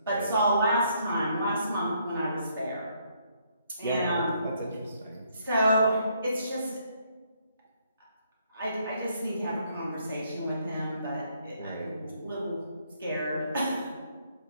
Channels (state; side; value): inverted; both; correlation -0.70